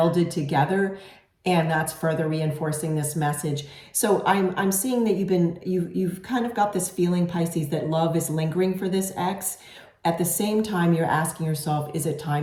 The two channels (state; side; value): identical; both; correlation 1.00